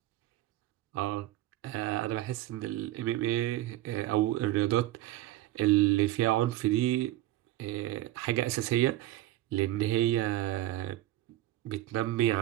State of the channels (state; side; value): quieter; left; 15.5 dB